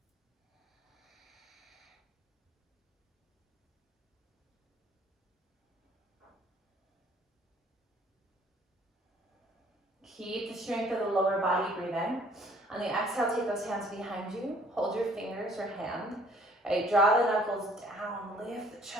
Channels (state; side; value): normal; both; correlation 0.58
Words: Keep the strength of the lower body breathing. On the exhale, take those hands behind you. Hold your fingers or hand. Right, draw the knuckles down. Lift the